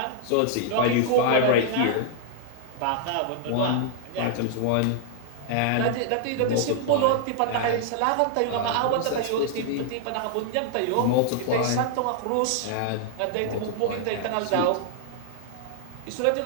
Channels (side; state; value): both; different; correlation -0.01